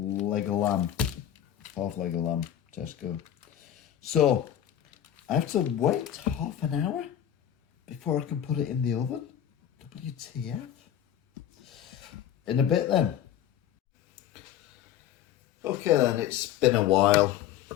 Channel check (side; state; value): right; quieter; 10.7 dB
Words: of lamb, half leg of lamb, Tesco. So I have to wait half an hour before I can put it in the oven. WTF? In a bit then. Okay then, it's been a while.